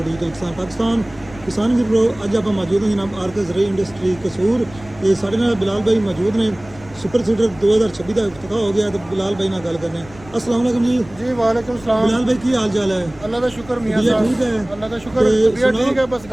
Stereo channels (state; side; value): noise; left; rumble, 21 dB below the sound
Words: ਡਿਜੀਟਲ ਕਿਸਾਨ ਪਾਕਿਸਤਾਨ। ਕਿਸਾਨ ਵੀਰੋ, ਅੱਜ ਆਪਾਂ ਮੌਜੂਦ ਹਾਂ ਜਨਾਬ ਆਰਕੇ ਜ਼ਰਾਈ ਇੰਡਸਟਰੀ ਕਸੂਰ। ਤੇ ਸਾਡੇ ਨਾਲ ਬਿਲਾਲ ਭਾਈ ਮੌਜੂਦ ਨੇ। ਸੁਪਰ ਸੀਡਰ 2026 ਦਾ ਇਫਤਤਾਹ ਹੋ ਗਿਆ ਤੇ ਬਿਲਾਲ ਭਾਈ ਨਾਲ ਗੱਲ ਕਰਨੇ। अस्सलाम वालेकुम जी। जी वालेकुम सलाम। बिलाल भाई की हाल चाल है? अल्लाह का शुक्र मियां तबीयत साहब। ठीक है? अल्लाह का शुक्र, ते तबीयत सुनाओ। ठीक है, बस